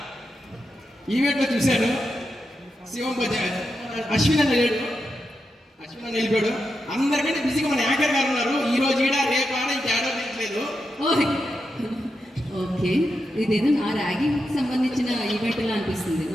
ఈవెంట్లో చూశాను, శివం అశ్విన్ అన్న లేడు, అశ్విన్ అన్న వెళ్ళిపోయాడు. అందరికంటే బిజీగా మన యాంకర్ గారు ఉన్నారు. ఈ రోజు ఈడ రేపు ఆడ ఇంకేడో లేదు. ఓకే, ఇదేదో నా ర్యాగింగ్ సంబంధించిన ఈవెంట్ లా అనిపిస్తుంది.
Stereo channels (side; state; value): both; normal; correlation 0.87